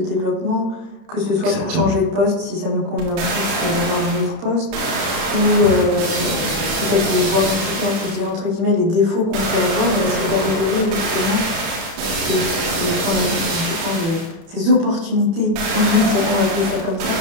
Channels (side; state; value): left; late; 31 ms